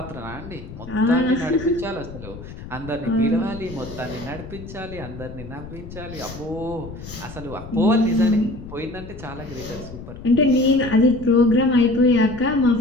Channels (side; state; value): left; noise; rumble, 13 dB below the sound